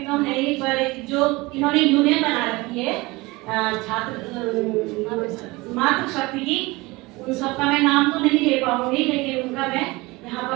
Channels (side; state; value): left; quieter; 22.5 dB